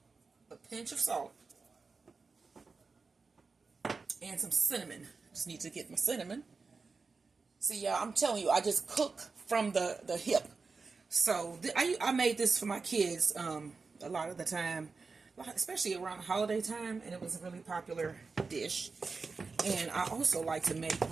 A pinch of salt. And some cinnamon. Just need to get my cinnamon. See, y'all, I'm telling you, I just cook from the hip. So I made this for my kids a lot of the time, especially around holiday time, and it was a really popular dish. And I also like to make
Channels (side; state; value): left; quieter; 4.5 dB